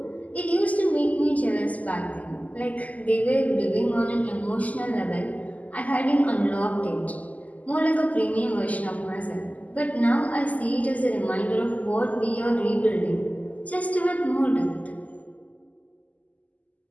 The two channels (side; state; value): right; late; 0.075 ms